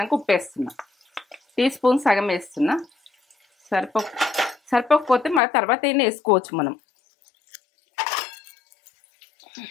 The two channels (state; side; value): drops out; right; at 5.4 s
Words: ఉప్పు వేస్తున్నా, టీ స్పూన్ సగం వేస్తున్నా. సరిపోకపోతే మన తర్వాత అయినా వేసుకోవచ్చు మనం.